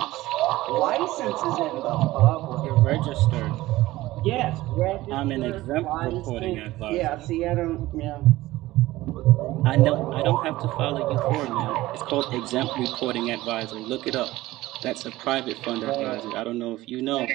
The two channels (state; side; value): quieter; left; 17.4 dB